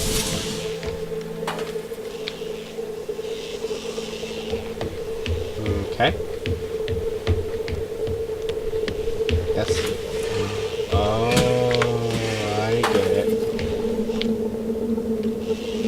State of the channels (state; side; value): identical; both; correlation 1.00